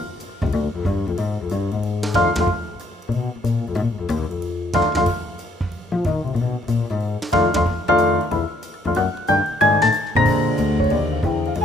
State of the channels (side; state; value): both; normal; correlation 0.69